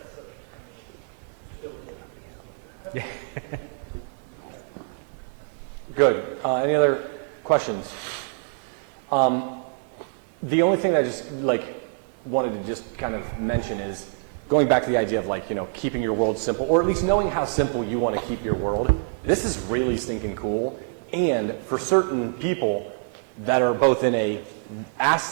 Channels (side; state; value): left; silent; 61 dB below the other